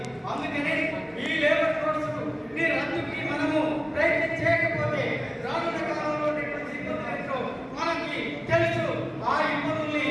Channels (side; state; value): both; identical; correlation 1.00